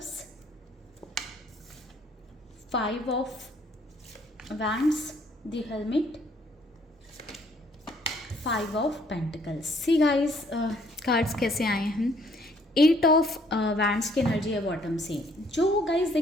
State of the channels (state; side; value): normal; both; correlation 0.63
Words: 5 of wands, the helmet, 5 of pentacles. See guys, cards कैसे आए हैं। 8 ऑफ वैंड्स की एनर्जी है बॉटम से। जो गाइस